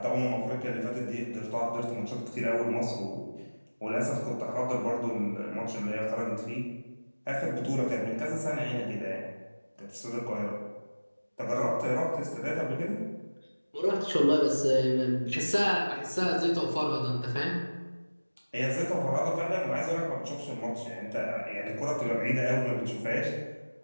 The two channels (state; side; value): inverted; both; correlation -1.00